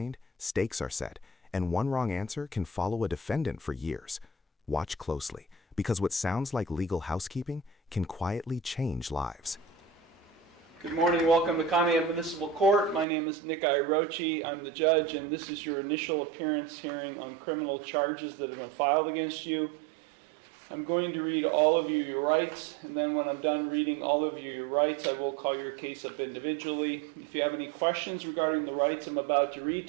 stakes are set, and one wrong answer can follow a defendant for years. Watch closely, because what sounds like legal housekeeping can quietly change lives. Good morning, welcome to Conneaut Municipal Court. My name is Nick Irochi. I'm the judge, and this is your initial appearance hearing on criminal charges that have been filed against you. I'm going to read all of you your rights, and then when I'm done reading all of you your rights, I will call your case up individually. If you have any questions regarding the rights I'm about to read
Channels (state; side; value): drops out; left; at 13.1 s